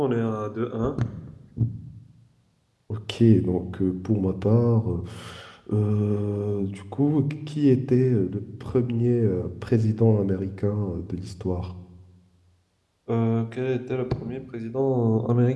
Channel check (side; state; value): both; identical; correlation 1.00